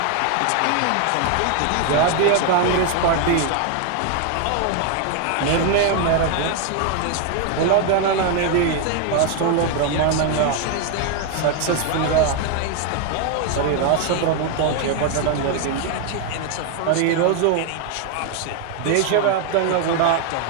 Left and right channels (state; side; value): different; both; correlation 0.01